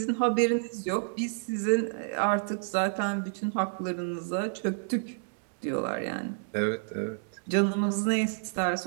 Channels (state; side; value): silent; left; digital silence